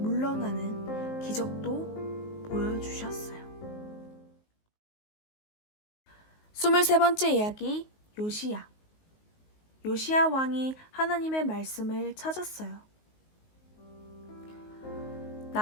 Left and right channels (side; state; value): right; late; 19 ms